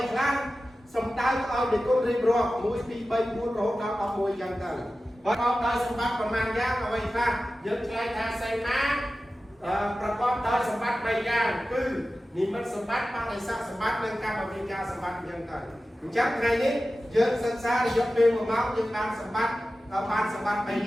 ខ្លះសំដៅឲ្យនិគុណរៀបរាប់1 2 3 4រហូតដល់11យ៉ាងទៅប្រកបដោយសម្បត្តិប៉ុន្មានយ៉ាងអ្វីខ្លះយើងឆ្លើយថាសីមាប្រកបដោយសម្បត្តិ3យ៉ាងគឺនិមិត្តសម្បត្តិបដិស័កសម្បត្តិនិងកម្មវិការសម្បត្តិយ៉ាងទៅអញ្ចឹងថ្ងៃនេះយើងសិក្សារយៈពេល1ម៉ោងយើងបានសម្បត្តិ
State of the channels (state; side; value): normal; both; correlation 0.94